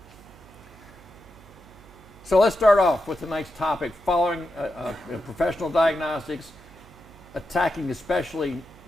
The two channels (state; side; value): noise; right; hum, 23 dB below the sound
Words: So let's start off with tonight's topic, following professional diagnostics, attacking especially